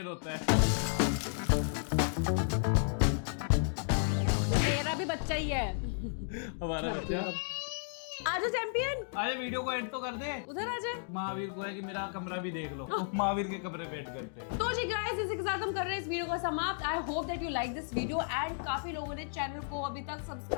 होता है। मेरा भी बच्चा ही है हमारा बच्चा। आजा चैंपियन, अरे वीडियो को एंड तो कर दे। उधर आजा। महावीर को है कि मेरा कमरा भी देख लो। महावीर के कमरे पे करते हैं। तो जी गाइस इसी के साथ हम कर रहे हैं इस वीडियो को समाप्त। I hope that you like this video and काफी लोगों ने चैनल को अभी तक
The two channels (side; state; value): right; silent; digital silence